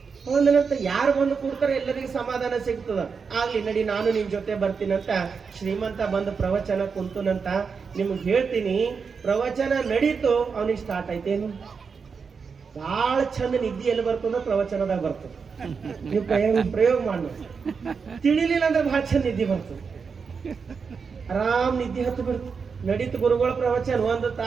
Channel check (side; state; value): left; quieter; 5.6 dB